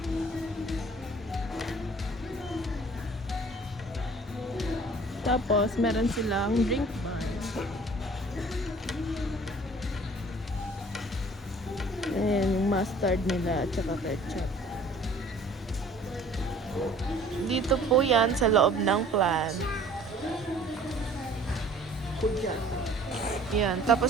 Tapos, meron silang drink bar. Ayan, yung mustard nila at saka ketchup. Dito po yan sa loob ng plant. Yan.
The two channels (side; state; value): both; normal; correlation 0.51